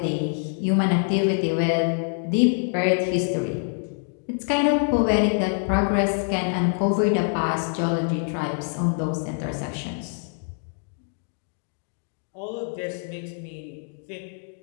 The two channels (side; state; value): right; silent; 57 dB below the other